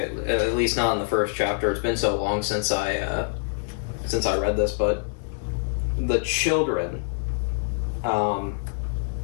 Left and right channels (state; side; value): silent; right; digital silence